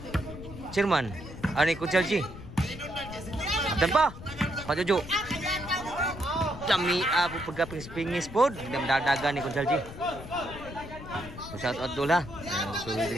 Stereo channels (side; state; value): left; noise; rumble, 13 dB below the sound